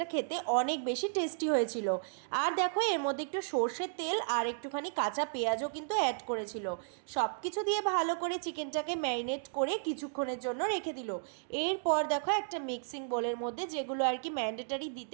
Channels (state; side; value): silent; left; digital silence